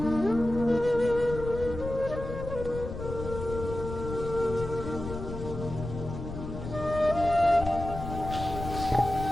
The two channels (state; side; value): noise; left; rumble, 8 dB below the sound